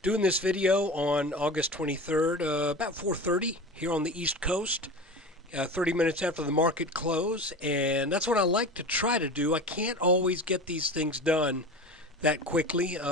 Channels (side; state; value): both; normal; correlation 0.32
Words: doing this video on August 23rd, about 4:30 here on the East Coast, 30 minutes after the market close, and that's what I like to try to do. I can't always get these things done that quickly